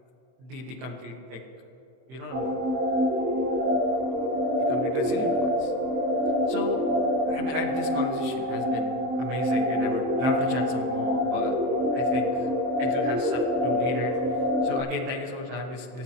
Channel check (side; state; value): left; late; 23 ms